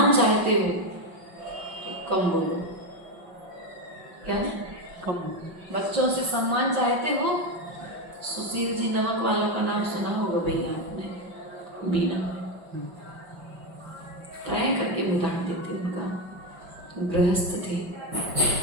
चाहते हो तो कम बोलो। क्या कम? बच्चों से सम्मान चाहते हो? सुशील जी नमक वालों का नाम सुना होगा भैया आपने, बीना ट्राई करके उदाहरण देते। उनका गृहस्थ थे,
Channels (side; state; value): left; late; 6.0 ms